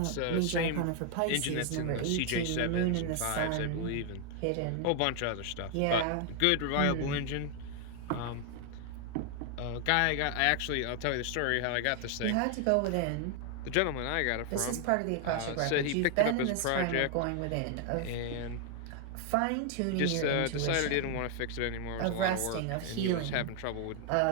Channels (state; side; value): different; both; correlation 0.00